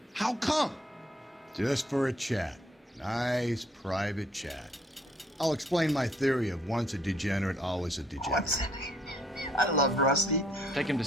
How come? Just for a chat. Nice private chat. I'll explain my theory of once a degenerate, always a degenerate. I love Rusty. Take him to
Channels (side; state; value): both; normal; correlation 0.65